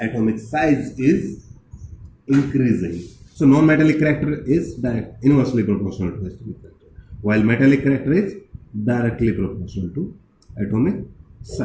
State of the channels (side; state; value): both; identical; correlation 1.00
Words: size is increasing. So non-metallic character is inversely proportional to atomic character, while metallic character is directly proportional to atomic